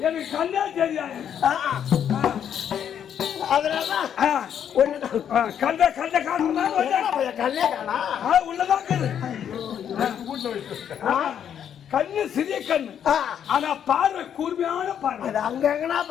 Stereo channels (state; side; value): quieter; right; 9.0 dB